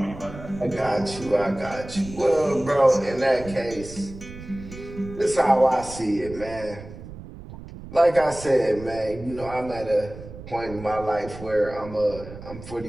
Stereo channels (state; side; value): noise; right; rumble, 14 dB below the sound